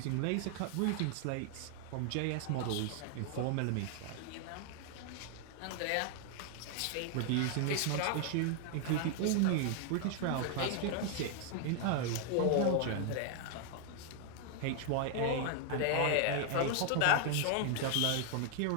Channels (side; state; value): both; different; correlation 0.00